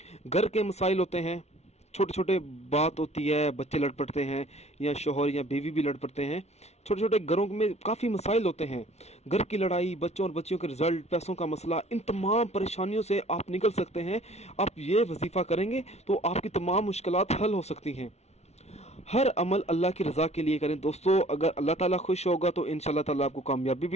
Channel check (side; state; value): right; late; 0.31 ms